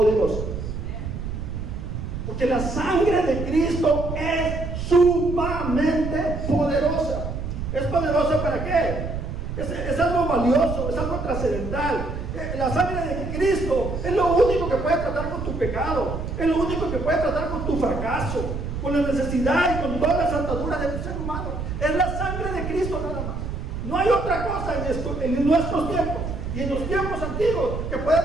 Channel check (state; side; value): noise; right; rumble, 5 dB below the sound